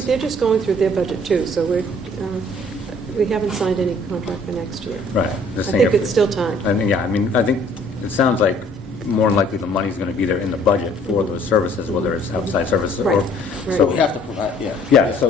they're just going through their budget too, so we haven't signed any contract for next year. Right. I Just saying think if- it's still time. I think it sounds like more than likely the money's going to be there in the budget for those services, whether it's outside services or. Right. So So we have to provide, yeah. Yeah,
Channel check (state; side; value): normal; both; correlation 0.57